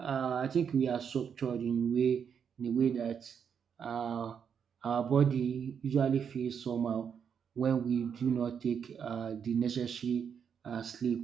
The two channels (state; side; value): quieter; left; 7.3 dB